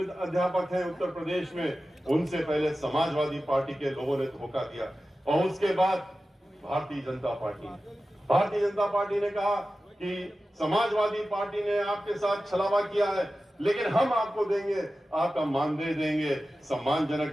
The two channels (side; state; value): both; normal; correlation 0.94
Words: अध्यापक हैं उत्तर प्रदेश में, उनसे पहले समाजवादी पार्टी के लोगों ने धोखा दिया। और उसके बाद भारतीय जनता पार्टी ने कहा कि समाजवादी पार्टी ने आपके साथ छलावा किया है, लेकिन हम आपको देंगे, आपका मानदेय देंगे, सम्मानजनक